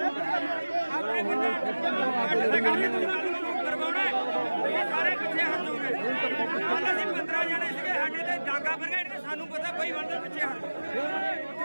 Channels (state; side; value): inverted; both; correlation -1.00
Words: ਸਾਰੇ ਪਿੱਛੇ ਹਟ ਜਾਓਗੇ ਕੱਲ ਅਸੀਂ 15 ਜਣੇ ਸੀਗੇ ਸਾਡੇ ਤੇ ਡਾਂਗਾ ਫਰਗਾ ਇਹਨੇ ਸਾਨੂੰ ਪਤਾ ਬਈ ਬੰਦੇ ਪਿੱਛੇ ਹਟ